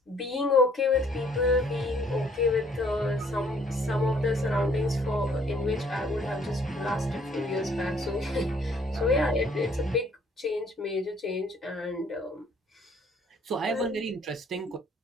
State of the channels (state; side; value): normal; both; correlation 0.62